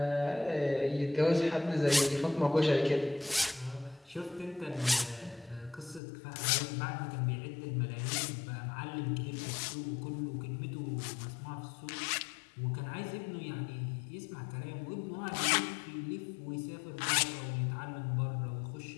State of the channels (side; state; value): right; drops out; at 6.0 s